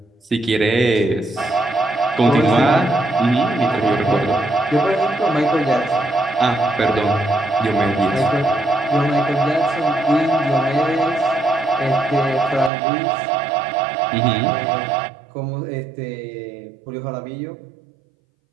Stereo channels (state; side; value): drops out; left; at 12.7 s